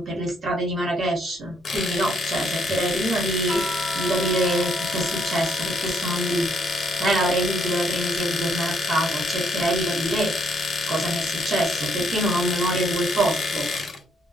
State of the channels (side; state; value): both; normal; correlation 0.70